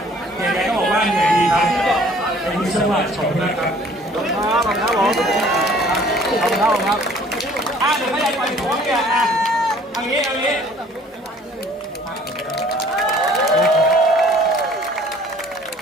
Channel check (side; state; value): both; normal; correlation 0.55